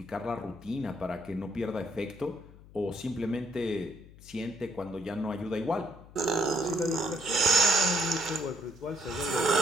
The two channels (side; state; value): left; noise; hum, 20 dB below the sound